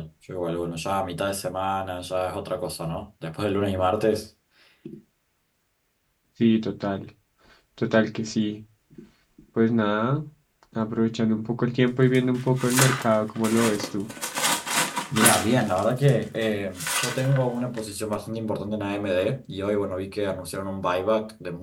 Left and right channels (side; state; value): both; identical; correlation 1.00